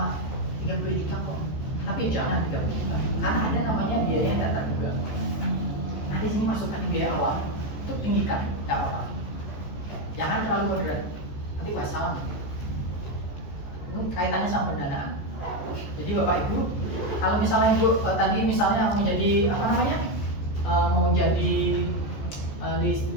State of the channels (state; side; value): late; right; 14 ms